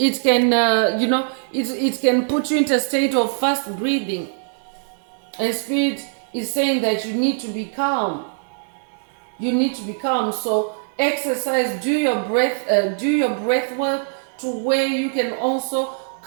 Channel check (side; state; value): left; silent; 64 dB below the other